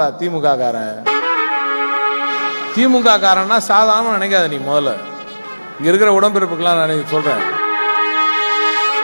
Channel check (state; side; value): inverted; both; correlation -1.00